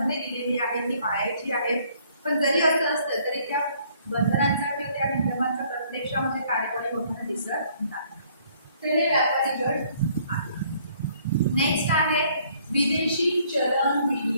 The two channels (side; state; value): both; inverted; correlation -0.62